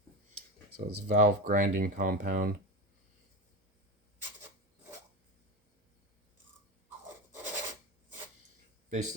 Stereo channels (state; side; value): normal; both; correlation 0.20